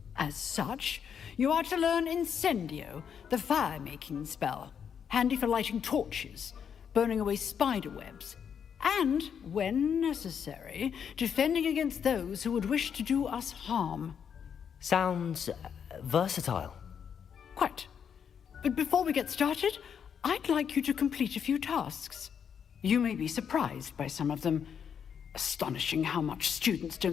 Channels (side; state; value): right; quieter; 7.6 dB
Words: As such, you are to learn Incendio, the fire-making spell, handy for lighting torches, burning away spider webs, and, when necessary, defending against those who would wish to do us harm. Sounds versatile. Quite. But before we get started, I'd like you to complete a few tasks. You may be surprised by some of them. Astonishing how much students